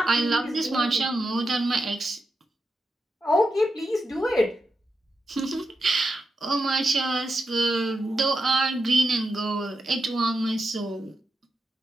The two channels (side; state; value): both; normal; correlation 0.87